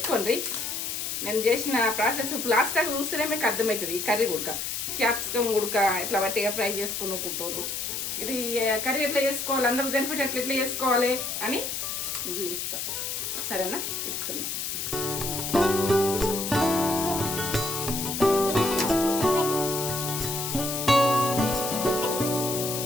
నేను చేసిన ప్రాసెస్ లాస్ట్ టైం చూస్తేనే మీకు అర్థమవుతుంది. ఈ కర్రీ ఉడక క్యాప్సికమ్ ఉడక ఇట్లా బట్టిగా ఫ్రై చేసుకునుకుంటారు. ఇది కర్రీ ఎట్లా చేసుకోవాలి, అందరూ బెనిఫిట్ ఎట్లా చేసుకోవాలి అని చూపిస్తా. సరేనా? ఇప్పుతున్నా.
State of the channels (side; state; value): left; noise; hiss, 3 dB below the sound